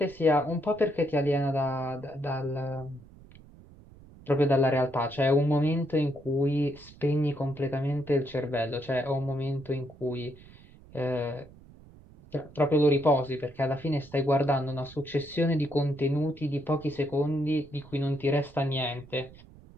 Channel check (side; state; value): right; noise; rumble, 22 dB below the sound